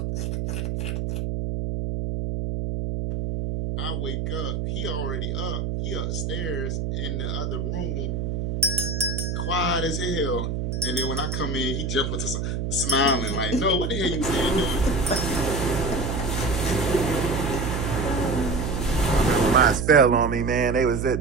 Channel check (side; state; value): right; noise; hum, 2 dB below the sound